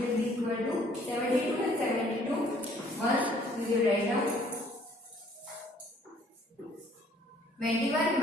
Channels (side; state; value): both; normal; correlation 0.59